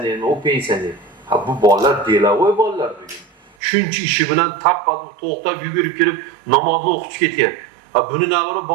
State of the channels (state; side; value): drops out; left; at 3.5 s